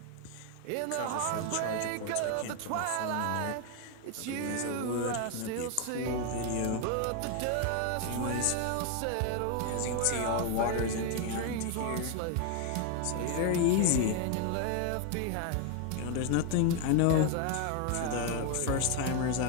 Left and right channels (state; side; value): different; both; correlation 0.01